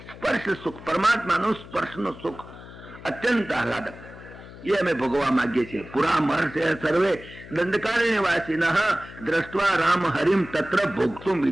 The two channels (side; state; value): left; noise; hum, 17 dB below the sound